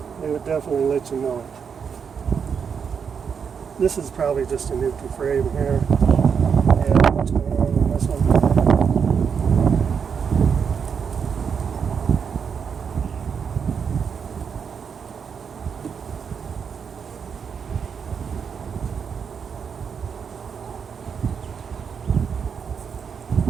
they would definitely let you know it. This is probably just an empty frame here. Yeah, what's going on this one?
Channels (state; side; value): quieter; left; 6.7 dB